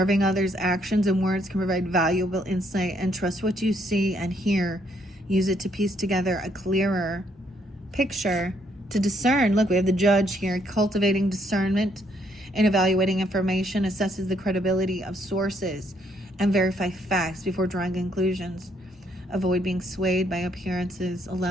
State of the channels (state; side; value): normal; both; correlation 0.71